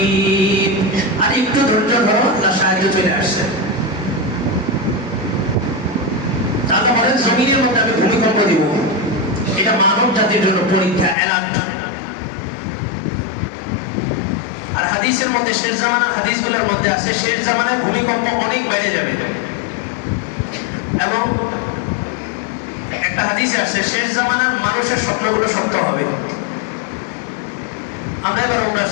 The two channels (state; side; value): drops out; right; at 11.2 s